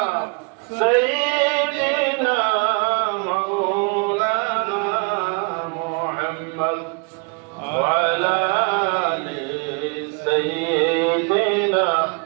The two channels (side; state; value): left; quieter; 34.0 dB